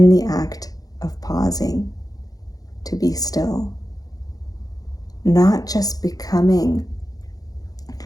the act of pausing to be still, not just becoming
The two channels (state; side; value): late; right; 0.18 ms